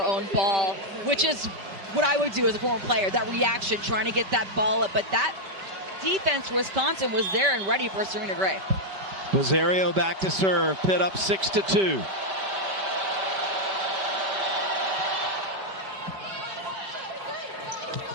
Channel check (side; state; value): left; late; 5.1 ms